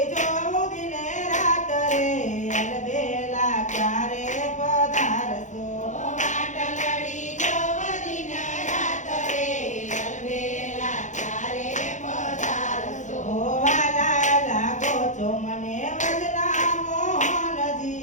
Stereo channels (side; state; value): right; late; 0.35 ms